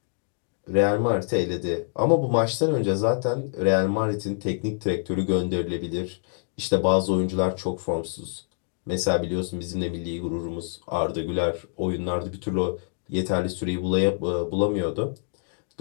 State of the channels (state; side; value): silent; right; digital silence